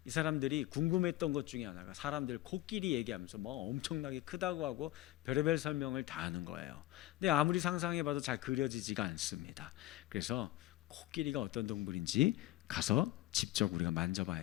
이 사람들이 궁금했던 것 중에 하나가 사람들 코끼리 얘기하면서 뭐 엄청나게 크다고 하고 별의별 설명을 다 하는 거예요. 근데 아무리 상상해봐도 잘 그려지지가 않습니다. 그래서 코끼리가 어떤 동물인지 가서 직접 우리가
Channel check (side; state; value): right; quieter; 16.2 dB